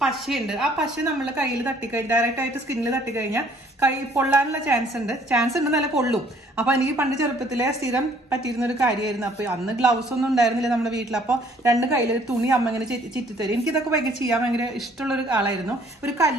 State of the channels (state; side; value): normal; both; correlation 0.60